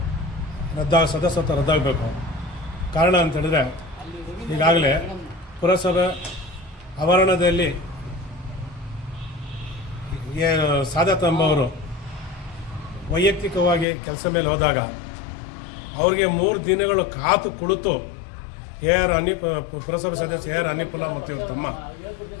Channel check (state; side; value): drops out; right; at 13.9 s